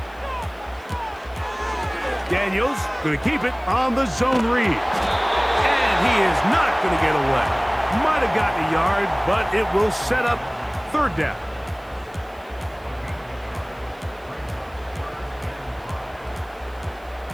Daniels going to keep it on the zone read. And he is not going to get away. Might have gotten a yard, but it will set up 3rd down.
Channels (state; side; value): noise; right; hiss, 30 dB below the sound